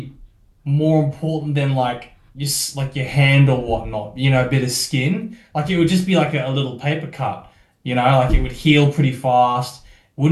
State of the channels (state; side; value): identical; both; correlation 1.00